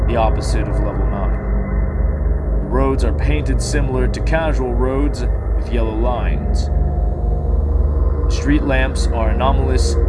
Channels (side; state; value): both; identical; correlation 1.00